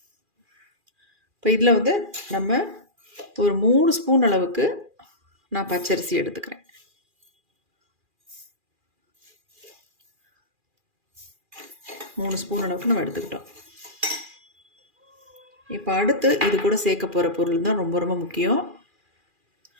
இப்போ இதில் நம்ம ஒரு 3 ஸ்பூன் அளவுக்கு நான் பச்சரிசி எடுத்துக்கிறேன். மூணு ஸ்பூன் அளவுக்கு நம்ம எடுத்துக்கிட்டோம். இப்போ அடுத்து இது கூட சேர்க்க போகிற பொருள் தான் ரொம்ப ரொம்ப முக்கியம்.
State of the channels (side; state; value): left; late; 2.4 ms